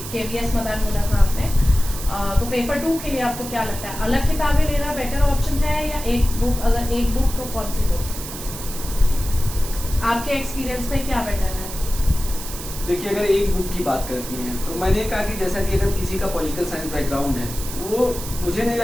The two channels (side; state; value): right; noise; hiss, 10 dB below the sound